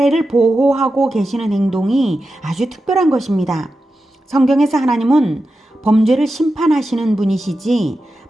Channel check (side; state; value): both; normal; correlation 0.91